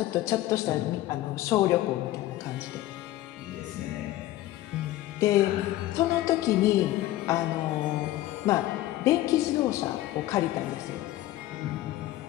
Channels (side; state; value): right; quieter; 15.4 dB